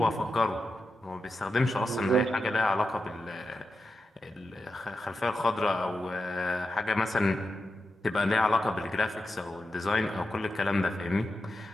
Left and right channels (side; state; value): both; normal; correlation 0.89